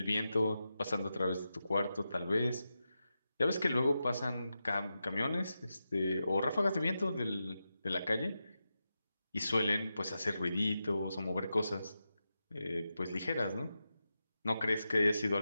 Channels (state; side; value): inverted; both; correlation -0.90